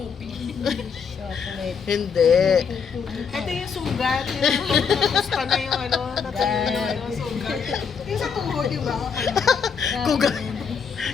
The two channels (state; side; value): quieter; right; 6.2 dB